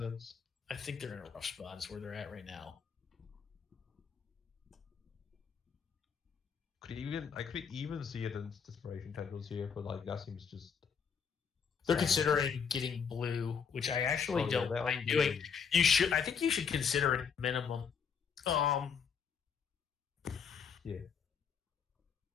I think they're in a rough spot. Is where they're at right now. I could even see it in Desperation Tendrils here, but like that seems just. They're considering getting blue, which I actually don't mind doing. You should. I think you should consider it minimum. Yeah.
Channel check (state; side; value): quieter; right; 6.6 dB